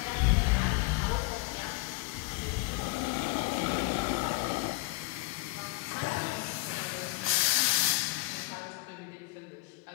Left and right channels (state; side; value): quieter; right; 20.4 dB